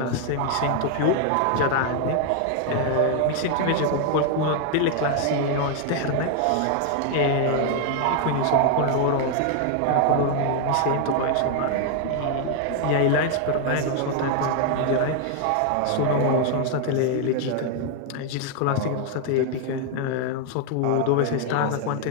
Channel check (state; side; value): different; both; correlation 0.00